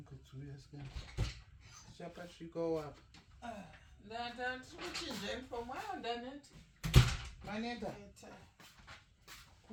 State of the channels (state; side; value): identical; both; correlation 1.00